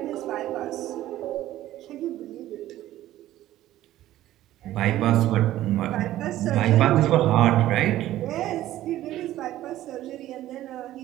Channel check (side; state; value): left; quieter; 14.2 dB